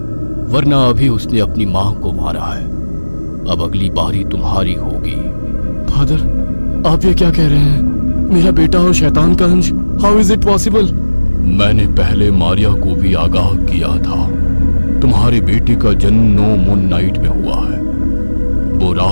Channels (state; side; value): inverted; both; correlation -1.00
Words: वरना अभी उसने अपनी मां को मारा है। अब अगली बारी तुम्हारी होगी। फादर, आप ये क्या कह रहे हैं? मेरा बेटा और शैतान का अंश, हाउ इज इट पॉसिबल? मैंने पहले मारिया को भी आगाह किया था। तुम्हारे बेटे का जन्म 9 मून नाइट में हुआ है। वो